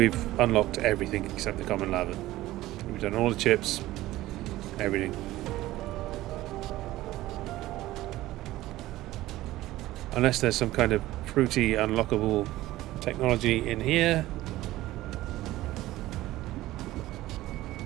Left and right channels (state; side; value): quieter; left; 16.4 dB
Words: unlocked everything except the common lava. We've done all the chips, everything. Unless there's some kind of fruity unlockable technology in here.